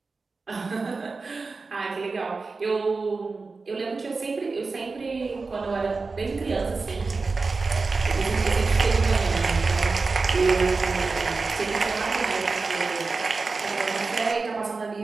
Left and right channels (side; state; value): left; quieter; 4.1 dB